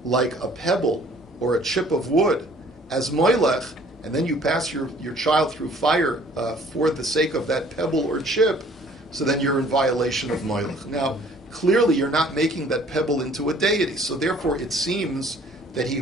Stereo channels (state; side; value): normal; both; correlation 0.55